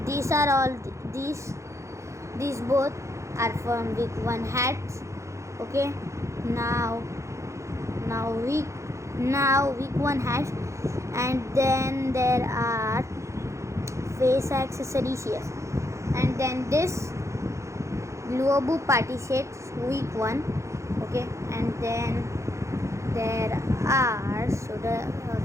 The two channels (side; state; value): left; late; 0.14 ms